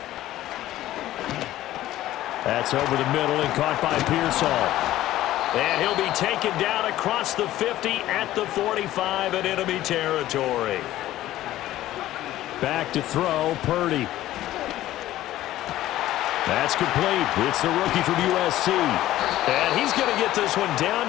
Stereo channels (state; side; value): quieter; right; 14.5 dB